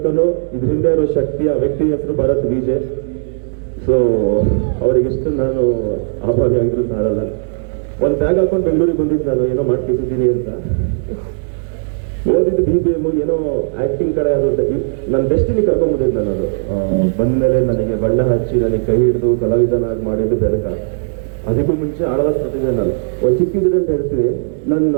ಇದ್ರ ಹಿಂದೆ ಇರೋ ಶಕ್ತಿ, ಆ ವ್ಯಕ್ತಿ ಹೆಸರು ಭರತ್ ವಿಜಯ್. ಸೊ ಅವರಿಗೆಷ್ಟು ನಾನು ಆಭಾರಿ ಆಗಿದ್ರು ಸಾರಲ್ಲ. ಒಂದು ಬ್ಯಾಗ್ ಹಾಕೊಂಡು ಬೆಂಗಳೂರಿಗೆ ಬಂದಿದ್ದು ನಾನು, ಏನೋ ಮಾಡ್ತಿದ್ದೀನಿ ಅಂತ. ಓದಿದ್ದು BBM, ಏನೋ ಆಕ್ಟಿಂಗ್ ಕಡೆ ಅದು ನನ್ನ ಡೆಸ್ಟಿನಿ ಕರ್ಕೊಂಡ್ಬಂದಿದ್ದು ನಾನು. ಬಂದ್ಮೇಲೆ ನನಗೆ ಬಣ್ಣ ಹಚ್ಚಿ ನನಗೆ ಕೈ ಹಿಡಿದು ಕಲಾವಿದನಾಗಿ ಮಾಡಿದ್ದು ಬೆನಕ. ಅದಕ್ಕೂ ಮುಂಚೆ ಆಳ್ವಾಸ್ ಪ್ರತಿಭೆ. ನಾನು ಒಂದು ಚಿಕ್ಕಿದ್ರೆ ಅಂತ ಹೇಳ್ತೀವಿ, ನನ್ನ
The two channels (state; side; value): silent; left; digital silence